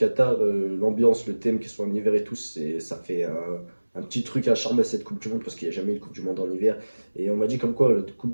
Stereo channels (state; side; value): inverted; both; correlation -1.00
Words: l'ambiance, le thème, qu'ils soient en hiver et tout, ça fait un petit truc à charmer à cette Coupe du Monde parce qu'il n'y a jamais eu de Coupe du Monde en hiver. Et on m'a dit comme quoi la Coupe